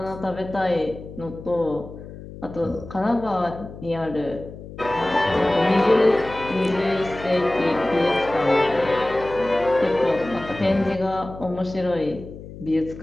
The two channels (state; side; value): noise; left; hum, 14 dB below the sound